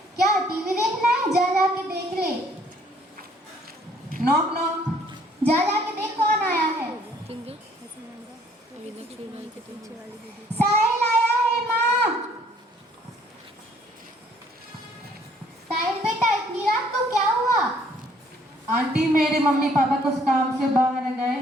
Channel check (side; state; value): both; normal; correlation 0.61